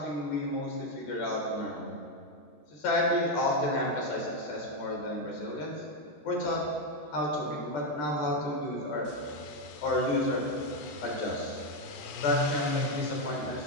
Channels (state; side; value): late; right; 14 ms